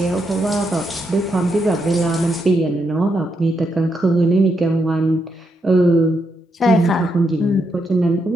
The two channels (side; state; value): both; normal; correlation 0.81